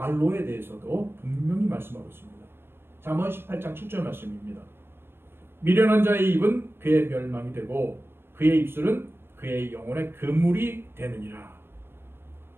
대해서도 분명히 말씀하고 있습니다. 잠언 18장 7절 말씀입니다. 미련한 자의 입은 그의 멸망이 되고 그의 입술은 그의 영혼의 그물이 되느니라.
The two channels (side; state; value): left; late; 0.11 ms